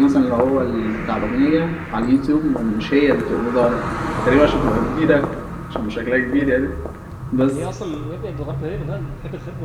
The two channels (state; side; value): identical; both; correlation 1.00